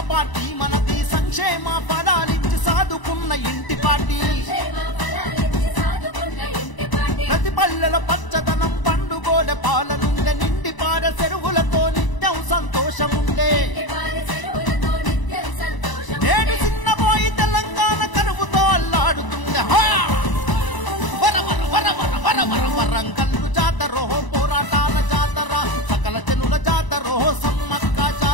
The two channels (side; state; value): right; late; 1.0 ms